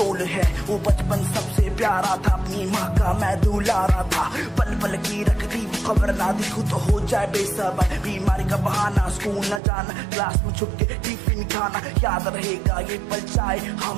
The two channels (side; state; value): left; drops out; at 9.6 s